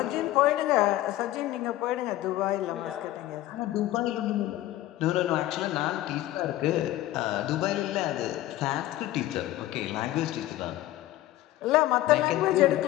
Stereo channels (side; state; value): right; quieter; 15.1 dB